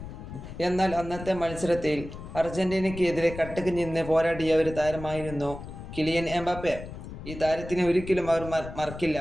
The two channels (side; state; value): left; noise; rumble, 11 dB below the sound